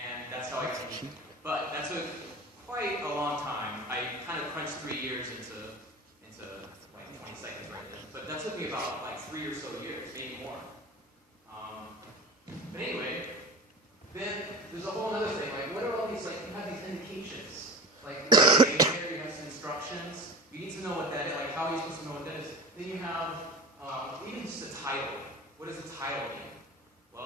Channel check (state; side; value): normal; both; correlation 0.33